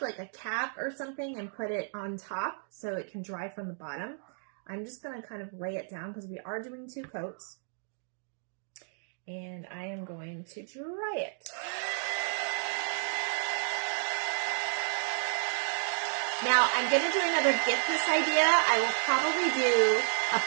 like a cap or something and put it on top so it can dry from the bottom. I'm just going to kind of lay it down because we are doing 2 coats. And I am going to dry it. Now, I'm going to do another Gift This idea. I will probably do a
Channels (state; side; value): silent; left; digital silence